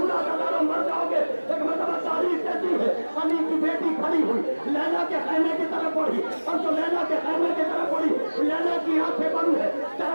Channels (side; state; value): both; inverted; correlation -1.00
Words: کا مر جاؤ گے۔ ایک مرتبہ تاریخ کہتی ہے علی کی بیٹی کھڑی ہوئی، لیلا کے خیمے کی طرف بڑھی، اور جو لیلا کے خیمے کی طرف بڑھی، لیلا کی آنکھیں بند ہے،